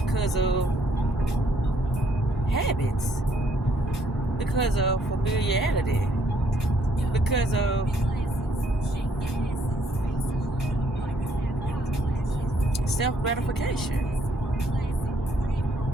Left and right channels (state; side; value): normal; both; correlation 0.68